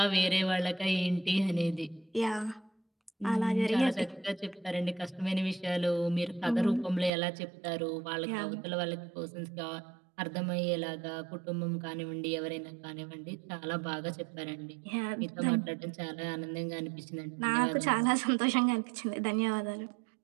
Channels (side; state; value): left; drops out; at 7.1 s